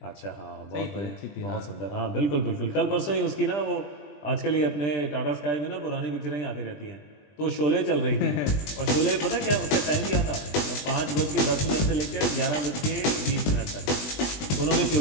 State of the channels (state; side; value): late; right; 20 ms